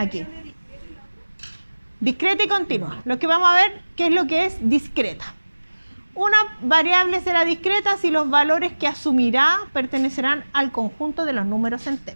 Discreta y continua. Lo que vamos a ver, ¿qué es lo que es discreta? Una variable será discreta si los valores que asumirá pertenecerán al conjunto de los números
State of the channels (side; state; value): both; inverted; correlation -1.00